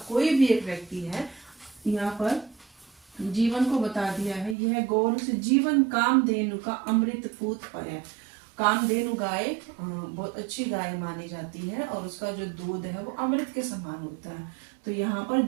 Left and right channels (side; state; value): left; drops out; at 4.5 s